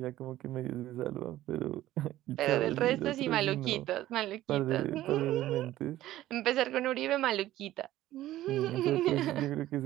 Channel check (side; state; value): left; quieter; 14.6 dB